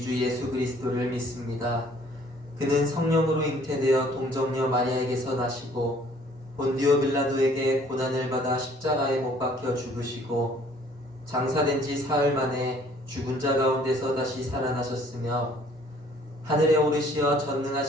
주 예수 그리스도를 믿습니다. 그는 성령으로 잉태되어 동정녀 마리아에게서 나시고 본디오 빌라도에게 고난을 받아 십자가에 못 박혀 죽으시고 장사된 지 사흘 만에 죽은 자 가운데서 다시 살아나셨으며 하늘에 오르시어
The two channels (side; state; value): both; normal; correlation 0.58